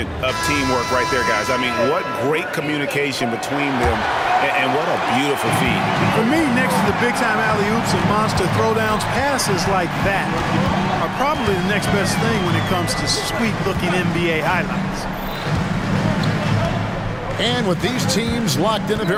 of teamwork right there, guys. I mean, what great communication between them, and what a beautiful feed. For me, next to the big-time alley-oops and monster throwdowns, passes like that are probably the next best thing when it comes to sweet-looking NBA highlights. And with these teams locked in a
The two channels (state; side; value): identical; both; correlation 1.00